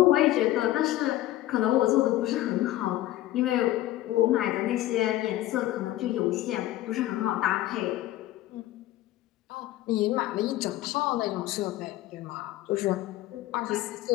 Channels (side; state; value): right; quieter; 15.2 dB